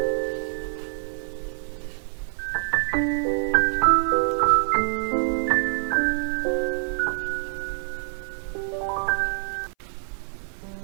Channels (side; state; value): left; silent; 58 dB below the other